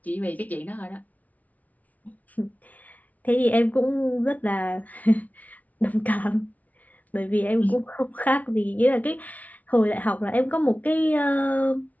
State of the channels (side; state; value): right; late; 0.072 ms